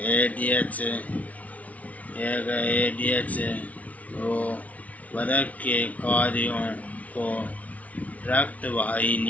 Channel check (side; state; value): right; late; 0.069 ms